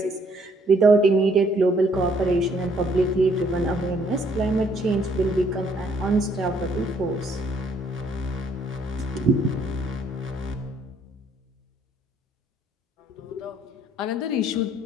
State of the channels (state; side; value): normal; both; correlation 0.66